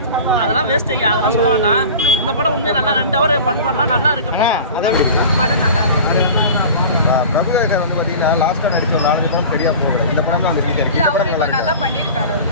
அதெல்லாம் வேஸ்ட்டுங்க, அதெல்லாம் சொல்லுவாங்கன்னா இந்த படம் உண்மையாக நல்லா 2 ஹவர் பண்ணலாம், நல்லா இருக்கு படம் நல்லா இருக்கு. பிரபுதேவர் வந்து பார்த்தீங்கன்னா லாஸ்ட்டாக நடிச்ச 4 படம் சரியாக போகல. இந்த படம் தான் இல்லை, அவர் இப்போ நல்லா பண்ணியிருக்காரு.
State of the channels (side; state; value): both; inverted; correlation -0.37